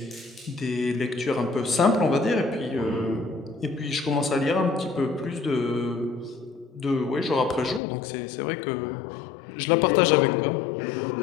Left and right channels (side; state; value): right; drops out; at 7.8 s